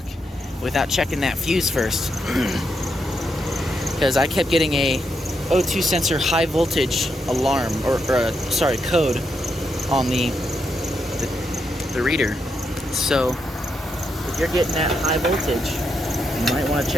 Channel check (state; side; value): normal; both; correlation 0.81